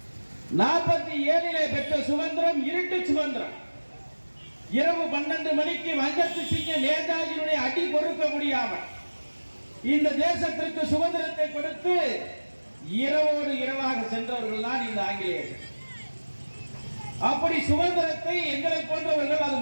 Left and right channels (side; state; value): both; inverted; correlation -1.00